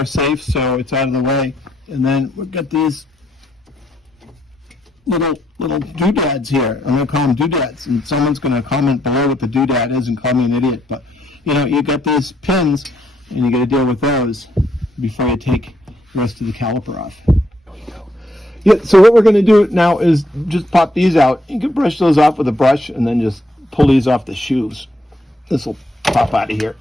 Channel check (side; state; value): both; normal; correlation 0.75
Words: safe so it's out of the way. And then we've got these little doodads here. I'm going to call them doodads. And someone's going to comment below what the doodad is and call me an idiot. But, you know, you got these pins and you got to deal with those before you take the rest of the caliper off. Yeah, so what we're going to do now is just pop these out. You can brush those off with a brush and then just pull these off the shoes. This will pop out of here.